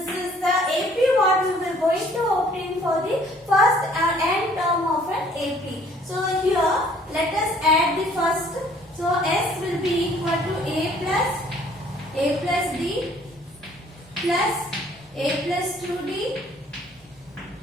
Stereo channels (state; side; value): normal; both; correlation 0.59